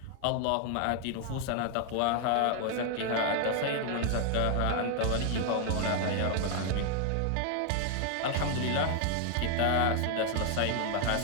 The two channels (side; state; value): both; different; correlation 0.01